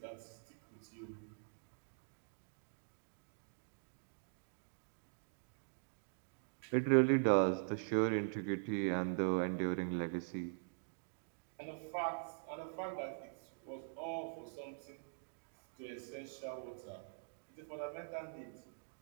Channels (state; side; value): silent; left; digital silence